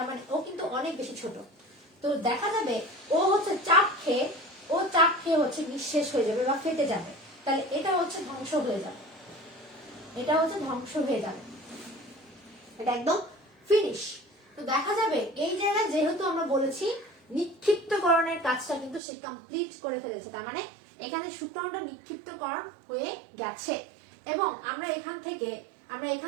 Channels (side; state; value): left; drops out; at 19.0 s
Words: মানে ও কিন্তু অনেক বেশি ছোট। তো দেখা যাবে ও হচ্ছে চাপ খেয়ে হচ্ছে নিঃশেষ হয়ে যাবে বা ফেটে যাবে। তাহলে এটা হচ্ছে ধ্বংস হয়ে যাবে, এটা হচ্ছে ধ্বংস হয়ে যাবে, এটা একদম ফিনিশ। তো দেখা যাবে এই জায়গায় যেহেতু আমরা বলেছি নিক্ষিপ্তকরণের কাজটা কিন্তু সে কমপ্লিট করে ফেলেছে, তার মানে এখানে শুক্রাণুটা নিক্ষিপ্তকরণ হয়ে গেছে। এবং আমরা এখান